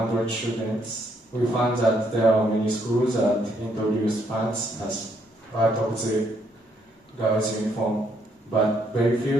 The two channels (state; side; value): normal; both; correlation 0.72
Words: students, we found that there are many schools that introduce pants as part of the girls' uniform, but very